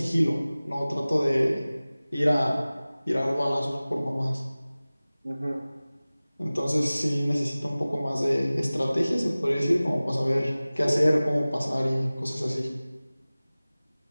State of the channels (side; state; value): both; inverted; correlation -0.98